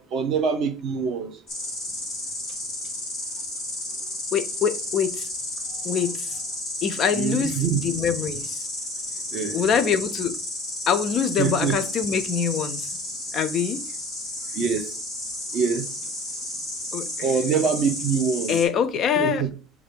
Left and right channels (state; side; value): normal; both; correlation 0.41